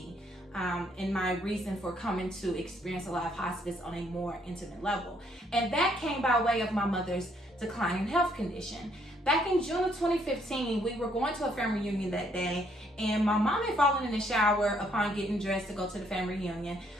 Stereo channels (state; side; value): normal; both; correlation 0.69